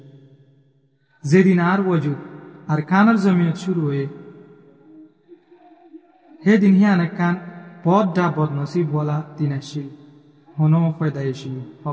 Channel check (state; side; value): identical; both; correlation 1.00